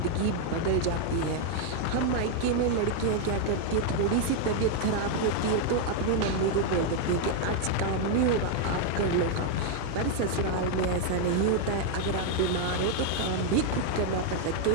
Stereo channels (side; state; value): both; different; correlation 0.00